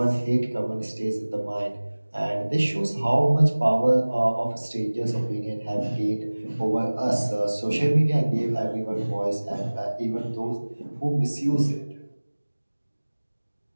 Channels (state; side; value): inverted; both; correlation -1.00